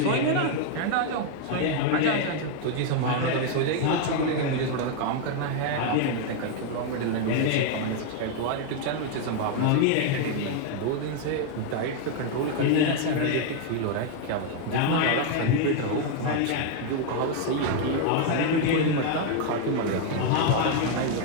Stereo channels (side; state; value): both; different; correlation 0.01